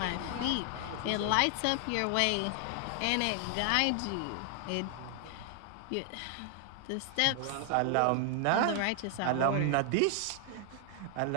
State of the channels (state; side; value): different; both; correlation 0.00